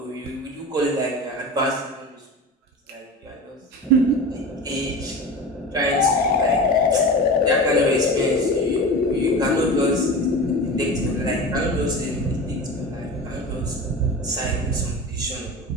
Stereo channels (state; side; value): normal; both; correlation 0.31